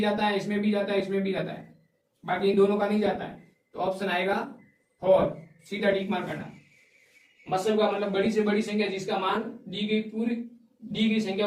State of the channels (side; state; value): both; identical; correlation 1.00